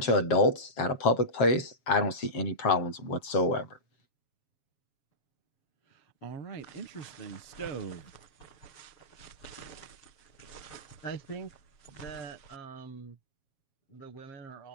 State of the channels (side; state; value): right; late; 7.3 ms